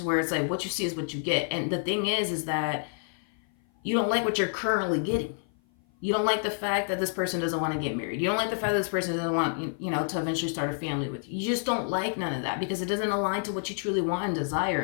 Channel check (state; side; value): silent; right; 55 dB below the other